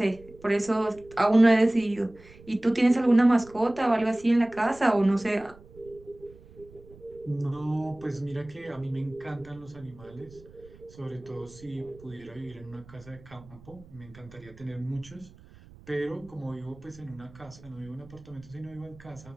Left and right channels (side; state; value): right; noise; rumble, 22 dB below the sound